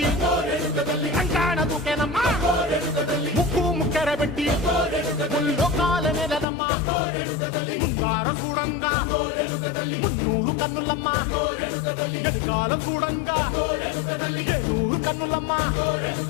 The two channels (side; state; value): right; drops out; at 6.5 s